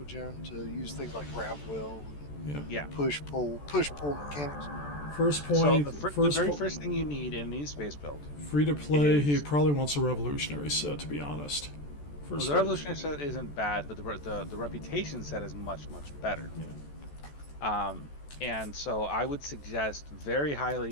gem to use things like Rapwell, Yeah. push pull mechanics. First So point. the First very po- first thing you need in any space build. free to play. is- He probably wants a revolutionary set, to be honest. Well, the revolutionary set isn't bad, but the reputation set is much better. Yeah. And so I would suggest very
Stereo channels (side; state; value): right; late; 14 ms